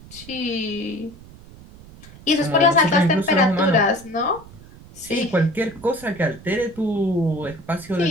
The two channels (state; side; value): noise; right; rumble, 20 dB below the sound